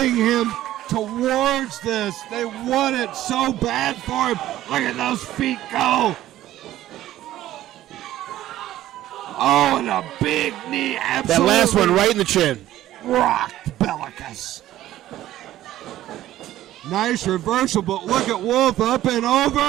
him towards this. They want it so bad for him. Look at those feet go. Oh, and a big knee. Absolutely. That last one right in the chin. Rocked Belakis. Nice reversal, but look at Wolf up and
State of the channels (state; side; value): quieter; left; 13.9 dB